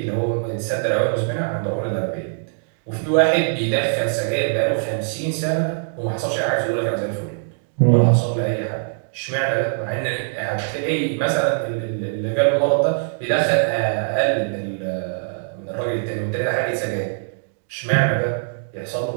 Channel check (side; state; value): left; silent; digital silence